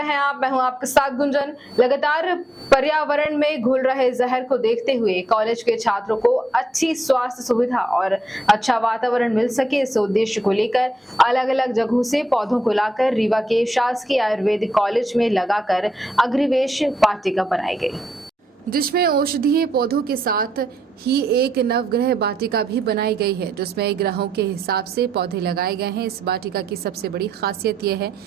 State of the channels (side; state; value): both; normal; correlation 0.81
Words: हैं आप। मैं हूं आपके साथ गुंजन। लगातार पर्यावरण में घुल रहे जहर को देखते हुए कॉलेज के छात्रों को अच्छी स्वास्थ्य सुविधा और अच्छा वातावरण मिल सके, इस उद्देश्य को लेकर अलग अलग जगहों से पौधों को लाकर रीवा के शासकीय आयुर्वेदिक कॉलेज में लगाकर अग्निवेश वाटिका बनाई गई, जिसमें औषधीय पौधों के साथ ही एक नवग्रह वाटिका भी बनाई गई है, जिसमें ग्रहों के हिसाब से पौधे लगाए गए हैं। इस वाटिका की सबसे बड़ी खासियत यह है